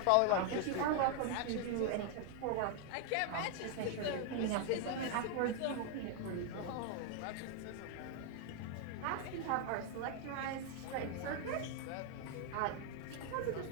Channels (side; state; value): both; different; correlation 0.00